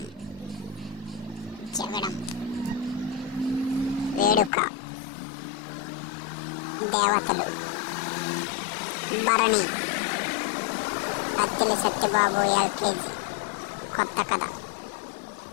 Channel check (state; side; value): drops out; right; at 4.5 s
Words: జగడం, వేడుక, దేవతలు, భరణి, కత్తిలి సత్యబాబు ఎల్కేజీ, కొత్త కథ,